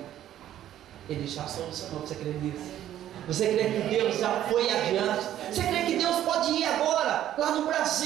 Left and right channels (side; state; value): left; quieter; 11.9 dB